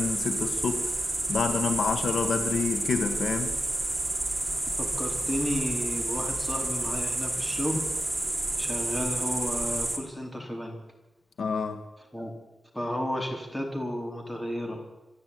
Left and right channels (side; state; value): both; normal; correlation 0.91